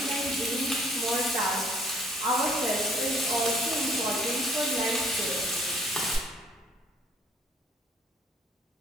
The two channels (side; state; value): both; normal; correlation 0.57